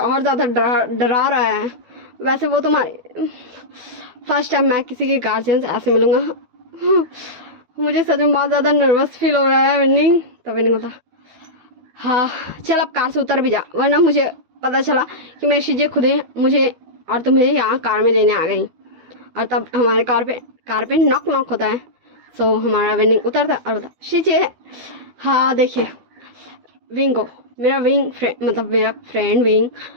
ज़्यादा डरा रहा है, वैसे वो तुम्हारी फर्स्ट टाइम मैं किसी के गार्जियन से ऐसे मिलूंगा, मुझे सच में बहुत ज़्यादा नर्वस फील हो रहा है विनिंग। तो विनिंग बोलता, हाँ चल अब कार से उतर भी जा, वरना मुझे पता चला कि मेरी चीज़ें खुद ही मुझे और तुम्हें यहाँ कार में लेने आ गई, और तब हमारे कार पे नॉक नॉक होता है। सो हमारा विनिंग उतरता है और बोलता, चीज़ें हाँ देखिए विंग को मेरा विंग फ्रेंड मतलब मेरा फ्रेंड विंग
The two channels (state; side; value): late; left; 13 ms